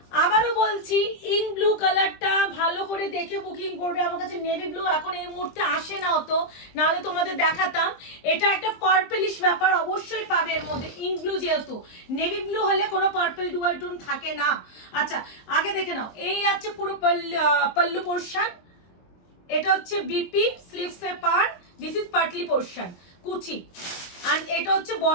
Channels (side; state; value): right; late; 23 ms